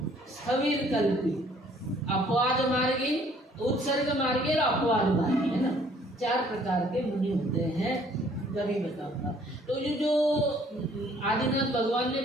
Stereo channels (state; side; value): normal; both; correlation 0.60